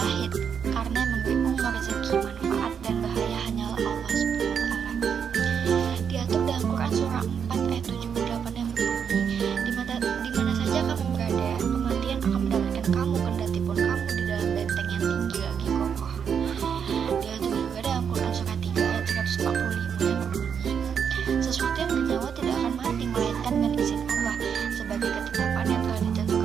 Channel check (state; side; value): quieter; left; 7.3 dB